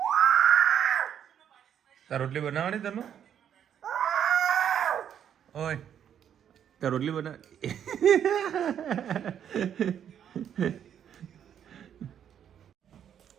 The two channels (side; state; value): left; quieter; 9.2 dB